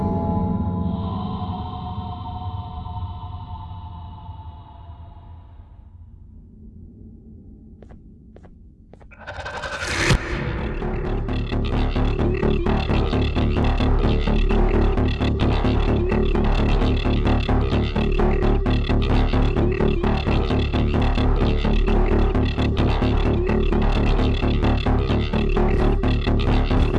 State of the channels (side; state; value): both; identical; correlation 1.00